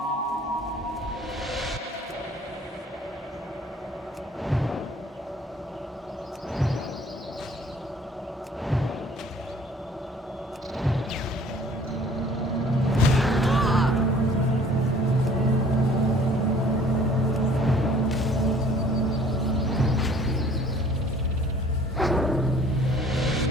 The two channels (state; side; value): normal; both; correlation 0.54